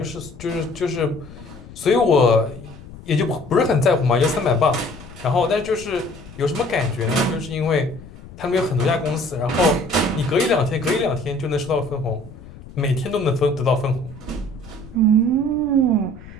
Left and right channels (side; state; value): left; noise; rumble, 17 dB below the sound